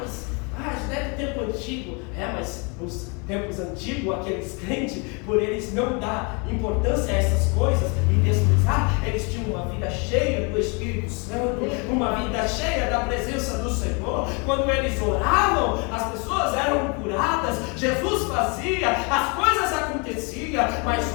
Isso é do tempo antigo. Mas nos tempos antigos, aqueles crentes, por eles não dar importância a essas coisas e desprezar, eles tinham uma vida cheia do Espírito Santo, uma vida cheia da presença do Senhor. Quando eles oravam, as pessoas eram curadas, Jesus fazia, as coisas aconteciam. Mas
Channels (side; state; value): right; quieter; 32.5 dB